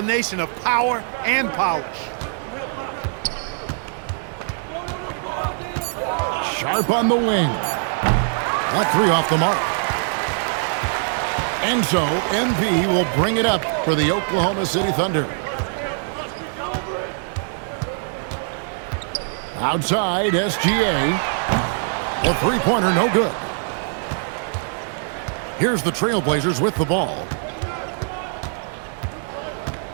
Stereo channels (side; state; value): left; silent; 58 dB below the other